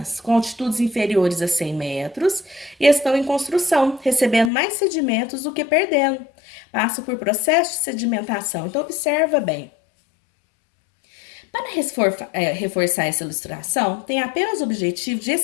com altitudes inferiores a 100 metros, e estão em construção, recebendo mais sedimentos do que perdendo. Passam por processo de sedimentação. Então, observa bem. Para reforçar essa ilustração, tem apenas o objetivo de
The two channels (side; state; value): right; drops out; at 4.5 s